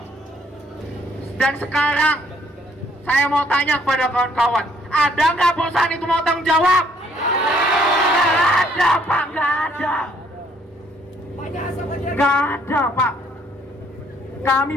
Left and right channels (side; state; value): both; normal; correlation 0.65